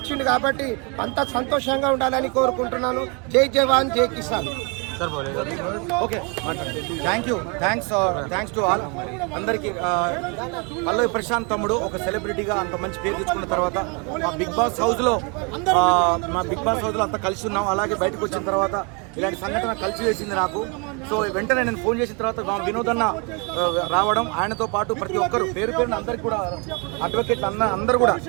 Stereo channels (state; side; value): quieter; left; 32.7 dB